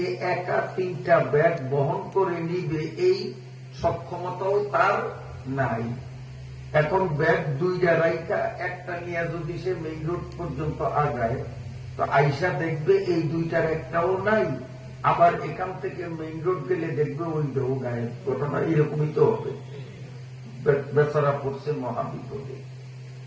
একা 3টা ব্যাগ বহন করে নিবে এই সক্ষমতাও তার নাই। এখন ব্যাগ 2টা রাইখা একটা নিয়ে যদি সে মেইন রোড পর্যন্ত আগায়, তো আইসা দেখবে এই 2টার একটাও নাই। আবার এখান থেকে মেইন রোড গেলে দেখবে ওইটাও গায়েব। ঘটনা এরকমই তো হবে। বেচারা পড়ছে মহাবিপদে।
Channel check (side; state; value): both; identical; correlation 1.00